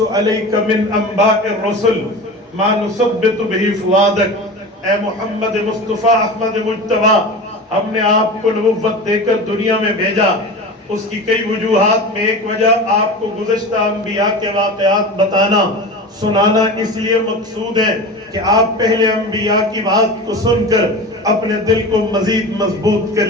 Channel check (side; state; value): both; normal; correlation 0.31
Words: عَلَيْكَ مِنْ أَنْبَاءِ الرُّسُلِ مَا نُثَبِّتُ بِهِ فُؤَادَكَ۔ اے محمد مصطفیٰ احمد مجتبیٰ، ہم نے آپ کو نبوت دے کر دنیا میں بھیجا، اس کی کئی وجوہات میں ایک وجہ آپ کو گزشتہ انبیاء کے واقعات بتانا سنانا اس لیے مقصود ہے کہ آپ پہلے انبیاء کی بات کو سن کر اپنے دل کو مزید مضبوط